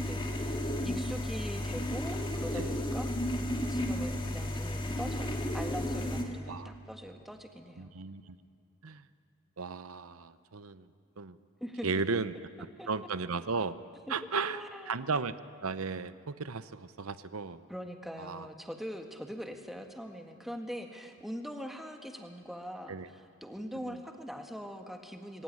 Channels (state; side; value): normal; both; correlation 0.47